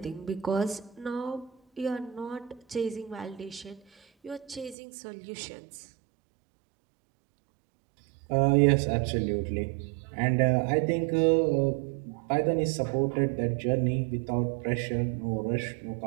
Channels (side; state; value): left; drops out; at 4.8 s